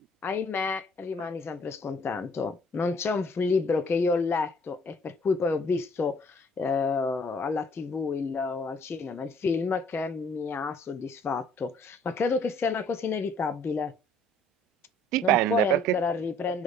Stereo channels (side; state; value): both; normal; correlation 0.59